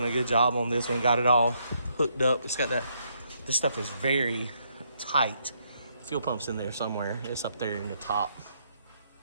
a good job on this one. Got it all hooked up. It's got that. This stuff is very tight. Fuel pump's in there somewhere. It's up there in the top.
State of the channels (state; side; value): inverted; both; correlation -0.74